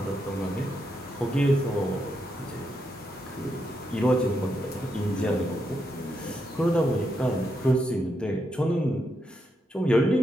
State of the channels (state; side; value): normal; both; correlation 0.82